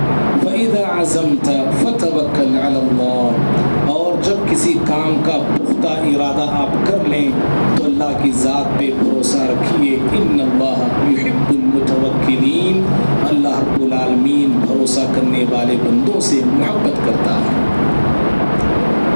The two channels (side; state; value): both; inverted; correlation -1.00